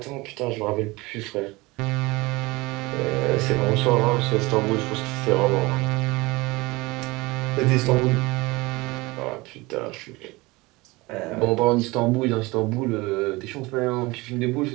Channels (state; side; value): quieter; left; 22.5 dB